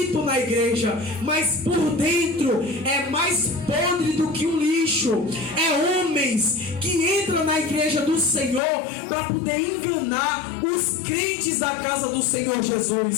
na igreja, mas por dentro é mais podre do que um lixo. É homens que entram na igreja do Senhor para poder enganar os crentes da casa do Senhor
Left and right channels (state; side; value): drops out; right; at 8.6 s